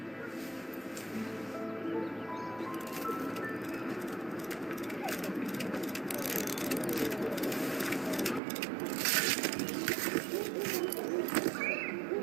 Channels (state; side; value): drops out; left; at 8.4 s